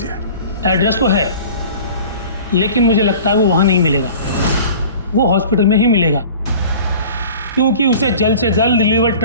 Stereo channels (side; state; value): both; inverted; correlation -0.42